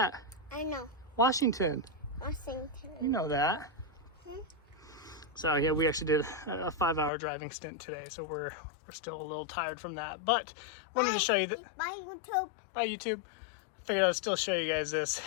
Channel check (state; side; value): drops out; right; at 7.1 s